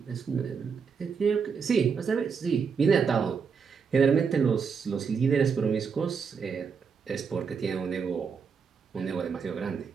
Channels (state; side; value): quieter; left; 6.0 dB